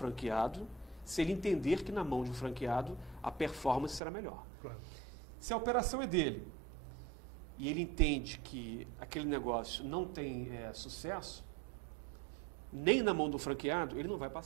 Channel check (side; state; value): left; drops out; at 4.0 s